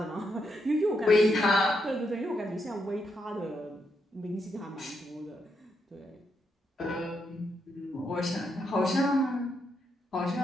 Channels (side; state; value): both; normal; correlation 0.80